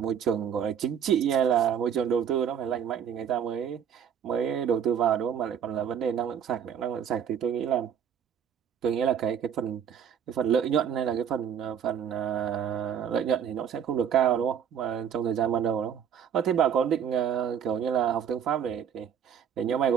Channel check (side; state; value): left; quieter; 8.5 dB